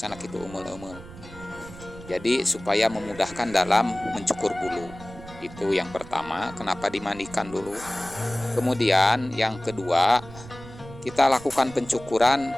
anak itu emel-emel. Jadi supaya memudahkan dalam mencukur bulu. Itu yang pertama, kenapa dimandikan dulu. Kemudian yang kedua, kita lakukan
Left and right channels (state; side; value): noise; right; rumble, 16 dB below the sound